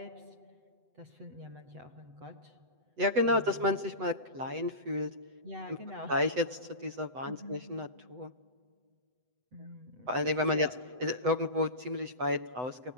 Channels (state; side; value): late; left; 7.9 ms